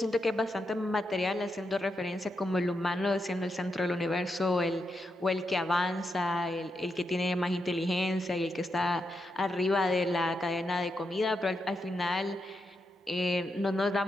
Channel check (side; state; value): both; normal; correlation 0.84